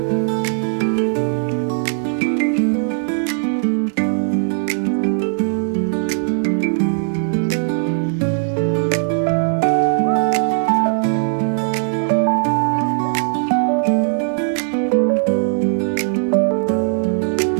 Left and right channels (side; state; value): left; silent; digital silence